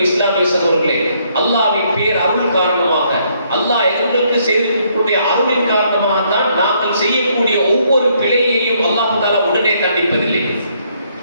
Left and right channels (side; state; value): both; inverted; correlation -0.70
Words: இஸ்லாமிய சகோதரர்களே, அல்லாஹ்வின் பேர் அருள் காரணமாக, அல்லாஹ் எங்களுக்கு செய்திருக்கக்கூடிய அருளின் காரணமாக தான் நாங்கள் செய்யக்கூடிய ஒவ்வொரு பிழையையும் அல்லாஹ் தஆலா உடனே தண்டிப்பதில்லை.